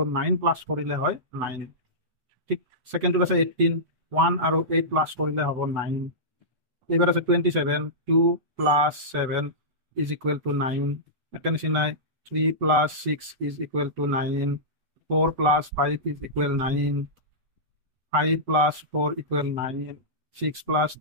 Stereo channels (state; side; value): late; left; 8.0 ms